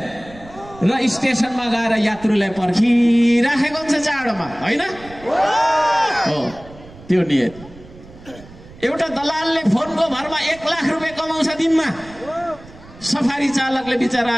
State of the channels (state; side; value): noise; right; rumble, 20 dB below the sound